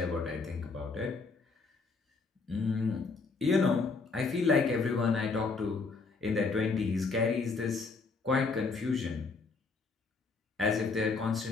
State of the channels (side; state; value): right; quieter; 4.3 dB